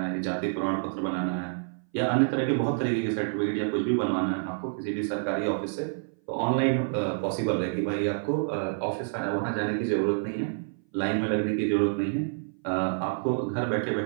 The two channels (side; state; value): left; silent; 58 dB below the other